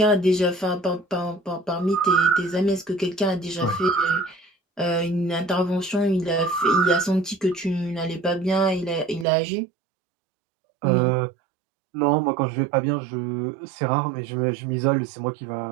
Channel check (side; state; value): left; drops out; at 9.2 s